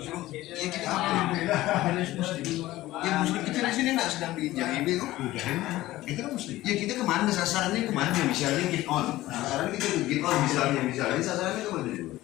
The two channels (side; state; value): right; quieter; 16.5 dB